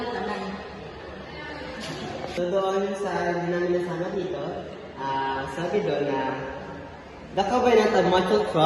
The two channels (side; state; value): both; identical; correlation 1.00